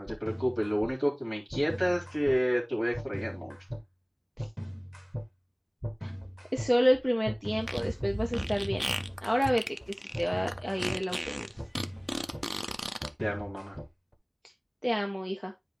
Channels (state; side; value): identical; both; correlation 1.00